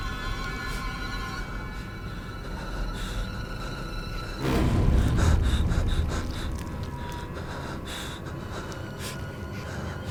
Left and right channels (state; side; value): identical; both; correlation 1.00